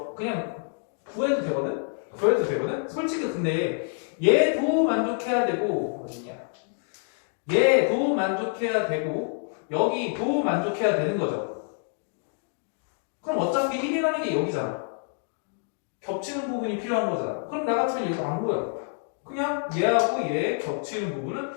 그냥 구해도 되거든? 솔직히 근데 얘도 만족해야 되고 어디냐? 얘도 만족해야 되고 여기도 만족해야 되는 거죠. 그럼 어차피 1이라는 게 여기잖아. 겹치는 부분이 필요한 거잖아. 그럼 나 같으면 얘가 안 보여. 그냥 얘하고 얘 겹치는 부분은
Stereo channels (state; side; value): silent; right; 56 dB below the other